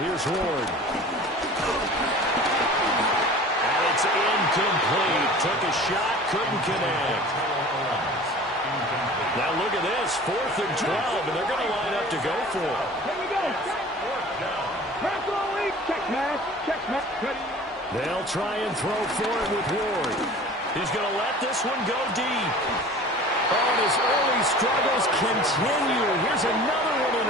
here's Ward. And it's incomplete. Took a shot, couldn't connect. Now look at this, 4th and 12, and they're going to line up to go for it. Here we go. Press all week. Check match. Ready. They'll try and throw for it with Ward. He's going to let this one go deep. Oh, and his early struggles continue. Here's another one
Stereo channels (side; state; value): both; normal; correlation 0.42